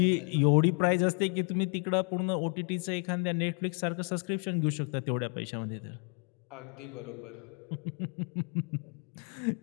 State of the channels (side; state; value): right; quieter; 39.9 dB